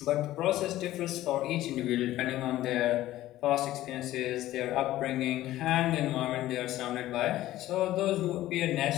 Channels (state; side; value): quieter; right; 15.0 dB